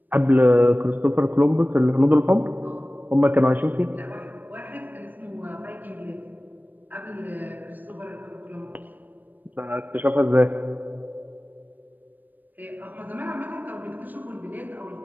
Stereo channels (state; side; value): late; left; 0.088 ms